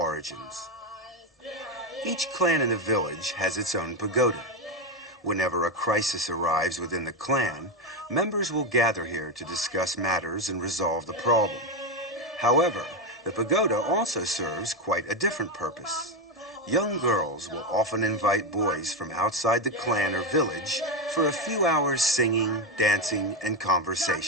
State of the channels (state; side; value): normal; both; correlation 0.10